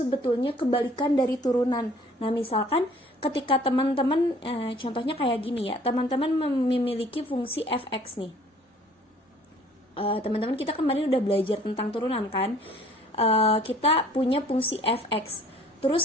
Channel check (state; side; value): normal; both; correlation 0.55